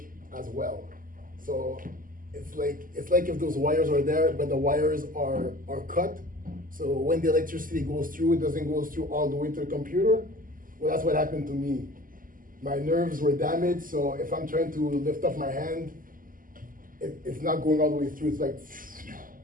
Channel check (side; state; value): left; late; 0.41 ms